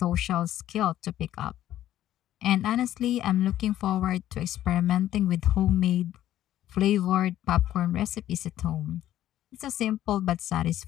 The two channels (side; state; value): right; quieter; 12.7 dB